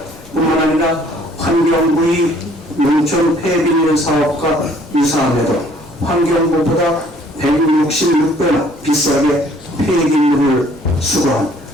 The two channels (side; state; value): both; normal; correlation 0.59